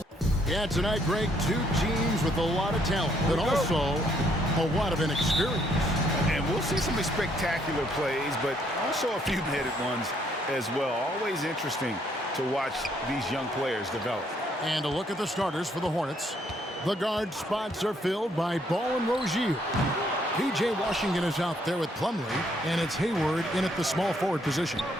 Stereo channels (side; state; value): both; normal; correlation 0.69